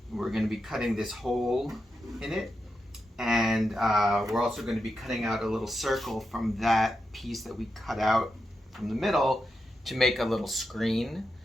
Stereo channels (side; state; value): both; normal; correlation 0.88